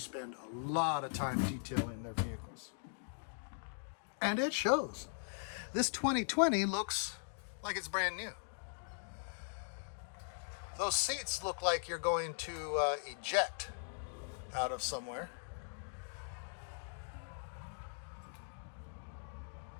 a lot of time detailing their vehicles. And it shows. This 2020 looks like it's brand new. Those seats look like you're going to eject out of somewhere.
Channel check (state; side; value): silent; right; digital silence